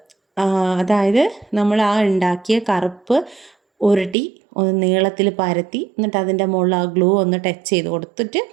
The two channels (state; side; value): drops out; left; at 4.2 s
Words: അതായത് നമ്മൾ ആ ഉണ്ടാക്കിയ കറുപ്പ് ഉരുട്ടി ഒന്ന് നീളത്തിൽ പരത്തി, എന്നിട്ട് അതിൻ്റെ മുകളിൽ ആ ഗ്ലൂ ഒന്ന് ടച്ച് ചെയ്ത് കൊടുത്തിട്ട്